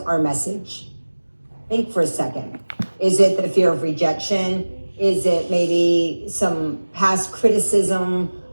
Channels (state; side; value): inverted; both; correlation -1.00